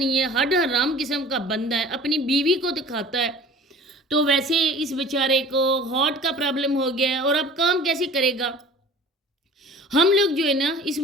ہے، ہڈ حرام قسم کا بندہ ہے، اپنی بیوی کو دکھاتا ہے، تو ویسے اس بیچارے کو ہارٹ کا پرابلم ہو گیا ہے اور اب کام کیسے کرے گا؟ ہم لوگ جو ہے نا اس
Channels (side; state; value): both; normal; correlation 0.44